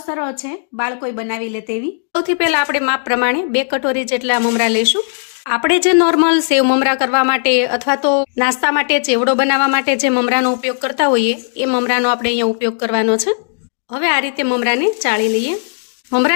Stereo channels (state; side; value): silent; right; digital silence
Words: સરળ છે, બાળકોય બનાવી લે તેવી। સૌથી પહેલા આપણે માપ પ્રમાણે 2 કટોરી જેટલા મમરા લઈશું। આપણે જે નોર્મલ સેવ મમરા કરવા માટે અથવા તો નાસ્તા માટે ચેવડો બનાવવા માટે જે મમરાનો ઉપયોગ કરતા હોઈએ એ મમરાનો આપણે અહીંયા ઉપયોગ કરવાનો છે। હવે આ રીતે મમરાને ચાળી લઈએ।